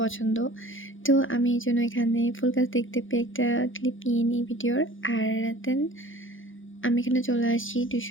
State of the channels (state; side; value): late; right; 0.58 ms